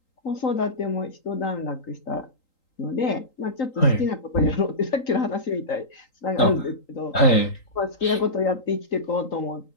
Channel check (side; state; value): right; late; 3.8 ms